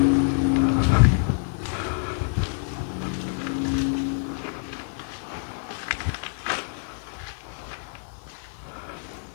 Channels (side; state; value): right; silent; digital silence